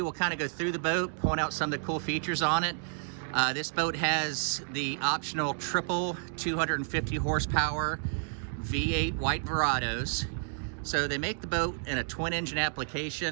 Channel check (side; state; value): left; silent; digital silence